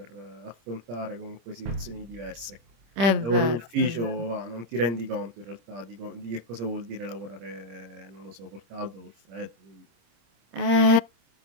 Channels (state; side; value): late; left; 26 ms